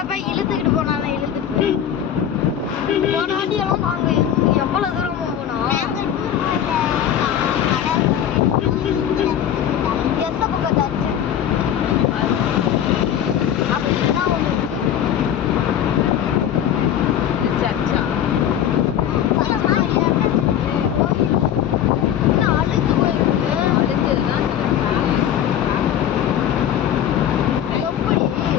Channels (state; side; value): quieter; right; 10.0 dB